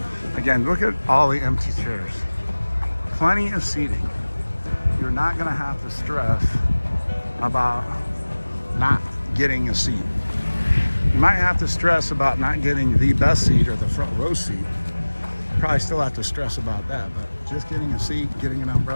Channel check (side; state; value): both; inverted; correlation -1.00